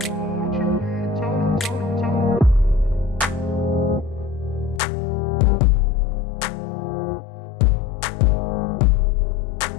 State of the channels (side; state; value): right; drops out; at 4.8 s